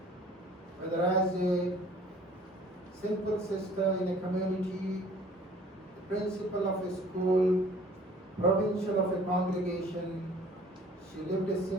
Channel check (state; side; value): normal; both; correlation 0.53